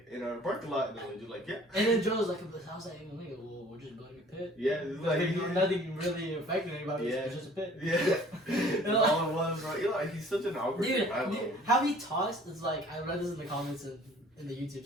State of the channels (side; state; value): both; normal; correlation 0.52